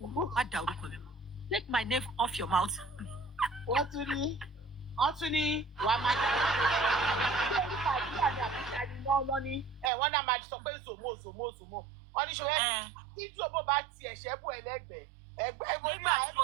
má dá orúkọ mi. Take my name off your mouth. Wọ́n tún ní wàá máa dá wọ́n náà máa sọ pé zòmó. Wọ́n ní ṣòwò tí zòmó bá ti ẹ̀ṣẹ́ bù ẹlẹ́gbẹ̀ẹ́ ẹgbẹ́ mo ní àyẹ̀wò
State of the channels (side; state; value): left; drops out; at 9.9 s